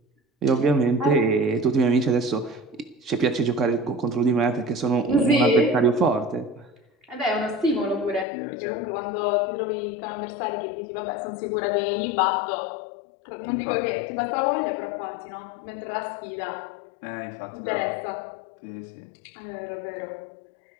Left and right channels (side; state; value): right; drops out; at 8.2 s